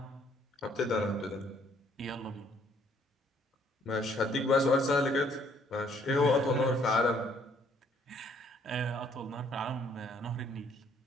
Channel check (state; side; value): normal; both; correlation 0.64